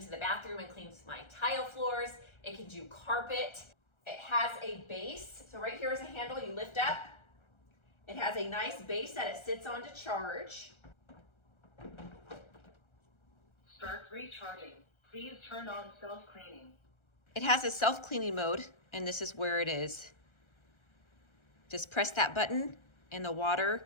the bathroom and clean my tile floors. It can do carpet. It has a base. So right here is a handle you lift up. It has a nice base that it sits on to charge. Start recharging. Please turn on self-cleaning. It has a self-cleaning mode, and this is where it is. Just press that button and the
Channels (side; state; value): right; late; 1.3 ms